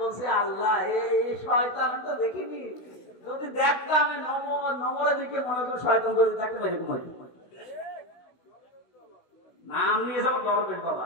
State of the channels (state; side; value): late; right; 16 ms